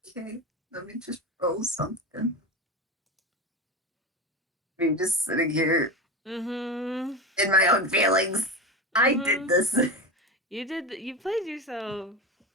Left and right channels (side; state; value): both; normal; correlation 0.22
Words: Okay, let me just roll something. I'm just sitting here Mm in my own feelings. hmm. I Mm did hmm. this. You did. You played yourself.